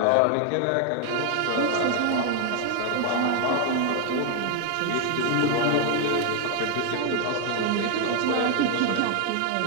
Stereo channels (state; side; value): different; both; correlation 0.01